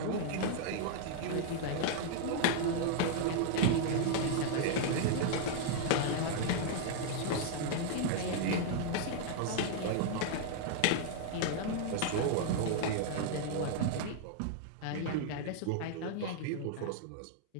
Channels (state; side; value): different; both; correlation -0.01